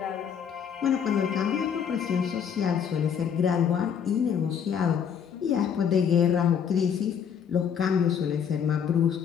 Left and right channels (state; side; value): quieter; right; 7.7 dB